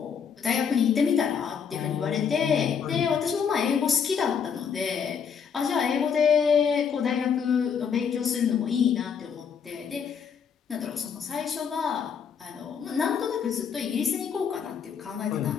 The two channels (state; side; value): quieter; right; 7.0 dB